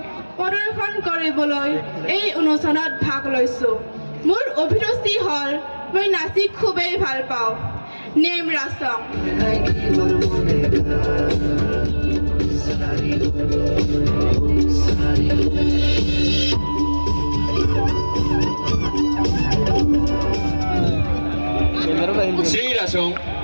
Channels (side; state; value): both; inverted; correlation -1.00